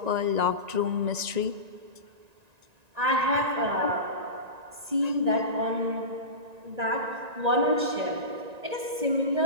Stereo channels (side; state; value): left; late; 1.9 ms